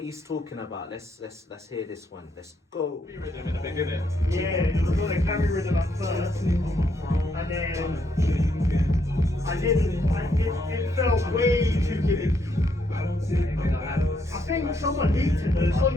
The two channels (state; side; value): normal; both; correlation 0.75